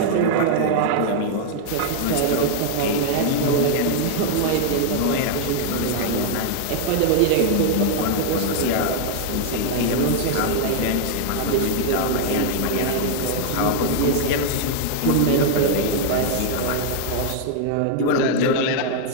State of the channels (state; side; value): different; both; correlation 0.00